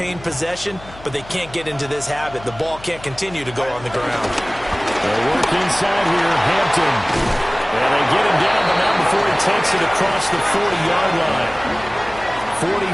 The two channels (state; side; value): noise; left; hum, 19 dB below the sound